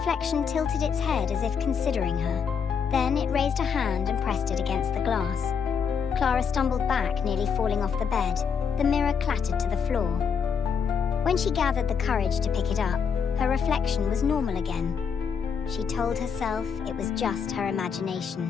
tilted its head as if considering her. Then it raised a hand and pressed it against the glass. Clara stumbled back, nearly falling off the bed. The mirror clattered to the floor. When she gathered the courage to pick it up, her reflection was normal again. She told herself it was just her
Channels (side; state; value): right; quieter; 6.6 dB